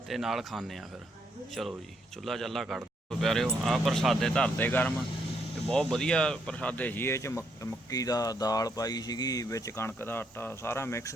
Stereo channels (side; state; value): both; normal; correlation 0.75